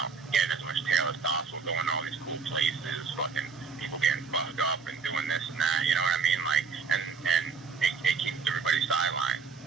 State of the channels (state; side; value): quieter; left; 5.3 dB